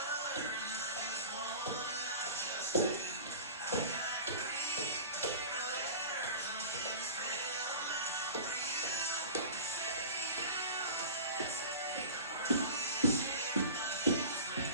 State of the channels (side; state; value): both; inverted; correlation -0.36